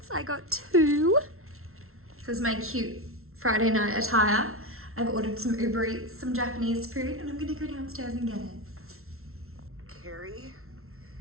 I got 2. This is my cute Friday night attire. I've ordered some Uber Eats, some Japanese food, and I'm gonna go downstairs and get it. Carrie,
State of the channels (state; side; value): late; left; 0.62 ms